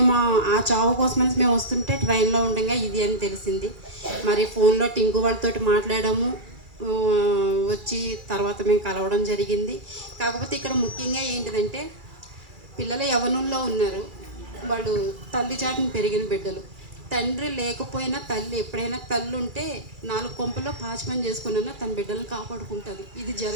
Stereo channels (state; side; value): late; left; 2.3 ms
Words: ఆ చావు కోసమని మేము వస్తుంటే ట్రైన్లో ఉండగా ఇది అని తెలిసింది. మరి ఫోన్లో టింకు వాళ్ళతోటి మాట్లాడాము. వచ్చి తర్వాత మేము కలవడం జరిగింది. కాకపోతే ఇక్కడ ముఖ్యంగా ఏంటిదంటే, పిల్లలు యవ్వనంలో ఉన్నారు. వాళ్ళు తల్లి చాటును పెరిగిన బిడ్డలు. తండ్రి లేకపోయినా తల్లి, ఎప్పుడైనా తల్లి ఉంటే 4 కొంపల్లో పాచి పని చేసుకున్నా తన బిడ్డలను కాపాడుకుంటుంది. ఇది